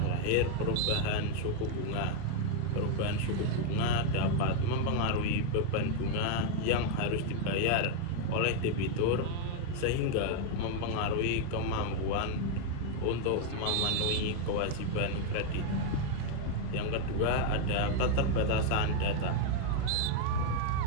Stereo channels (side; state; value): both; different; correlation 0.00